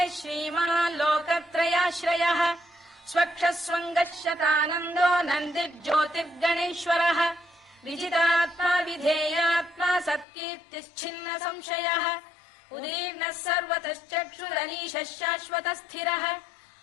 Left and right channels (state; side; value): drops out; right; at 10.2 s